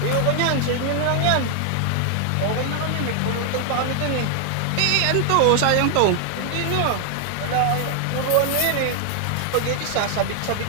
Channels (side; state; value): both; different; correlation 0.00